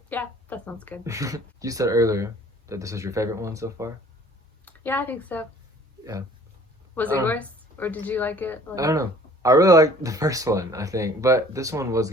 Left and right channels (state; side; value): normal; both; correlation 0.52